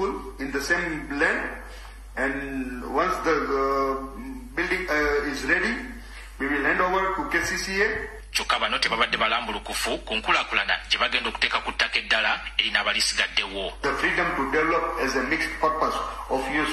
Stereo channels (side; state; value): both; identical; correlation 1.00